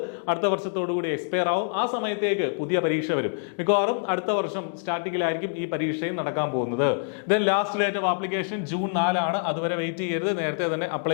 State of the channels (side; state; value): right; silent; digital silence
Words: അടുത്ത വർഷത്തോടു കൂടി എക്സ്പയർ ആവും. ആ സമയത്തേക്ക് പുതിയ പരീക്ഷ വരും. മിക്കവാറും അടുത്ത വർഷം സ്റ്റാർട്ടിങ്ങിലായിരിക്കും ഈ പരീക്ഷയും നടക്കാൻ പോകുന്നത്. Then last date of application June 4 ആണ്. അതുവരെ വെയിറ്റ് ചെയ്യരുത്, നേരത്തെ തന്നെ